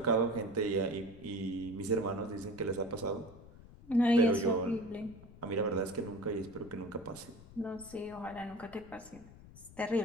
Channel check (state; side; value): noise; left; rumble, 19 dB below the sound